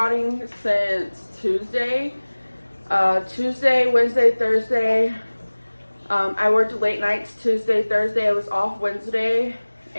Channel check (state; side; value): inverted; both; correlation -1.00